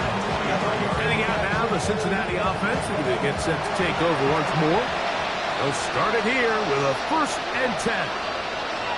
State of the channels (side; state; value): both; identical; correlation 1.00